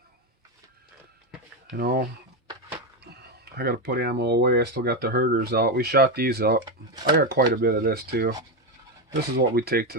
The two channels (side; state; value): both; normal; correlation 0.10